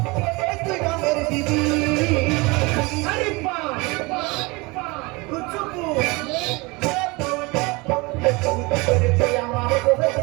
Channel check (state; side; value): quieter; left; 25.4 dB